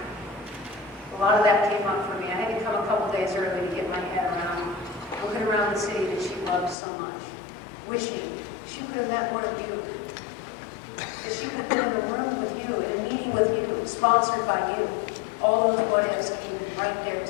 a lot of that came up for me. I had to come a couple days early to get my head around, looking around the city that she loved so much, wishing she could have met one of you, that she could have been in a room with you, in a meeting with you, sponsored by you. All those what-ifs came right there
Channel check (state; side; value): drops out; right; at 6.8 s